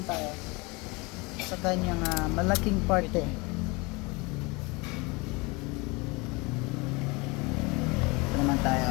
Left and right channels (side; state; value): right; quieter; 26.3 dB